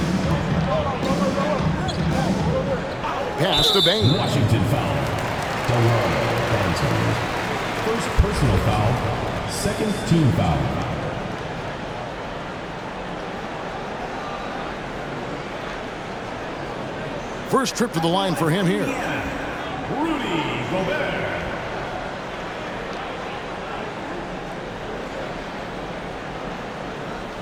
Pass to Bane. Washington foul. First personal foul, second team foul. First trip to the line for him here. Rudy Gobert.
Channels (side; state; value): both; identical; correlation 1.00